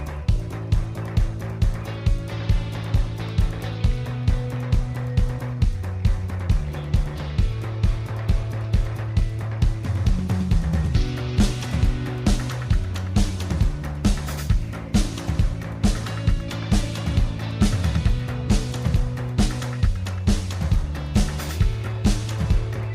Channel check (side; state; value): both; identical; correlation 1.00